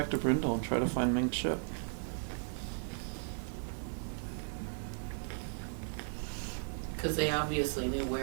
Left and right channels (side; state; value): left; silent; digital silence